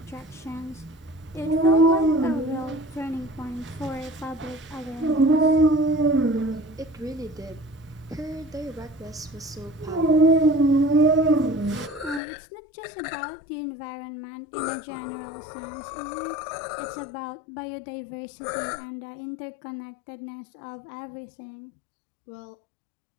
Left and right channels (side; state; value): right; drops out; at 12.2 s